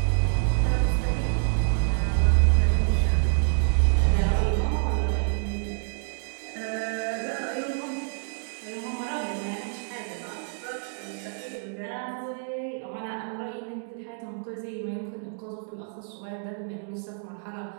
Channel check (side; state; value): left; silent; digital silence